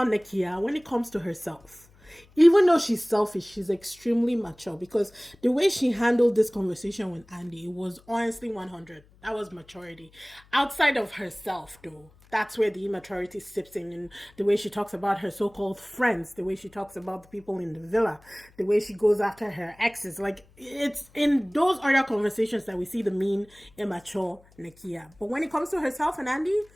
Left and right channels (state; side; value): noise; left; hum, 28 dB below the sound